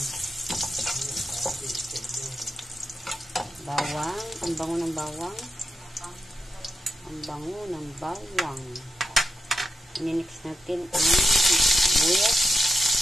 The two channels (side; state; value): both; normal; correlation 0.88